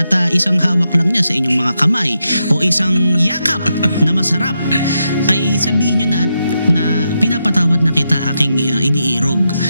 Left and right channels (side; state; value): both; inverted; correlation -0.85